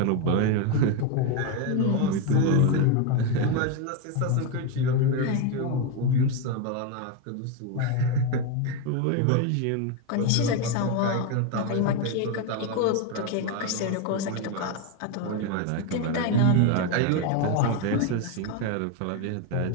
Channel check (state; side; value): different; both; correlation 0.02